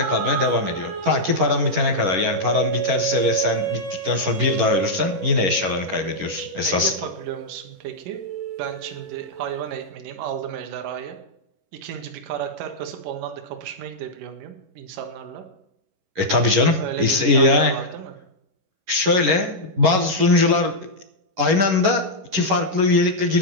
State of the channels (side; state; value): left; late; 11 ms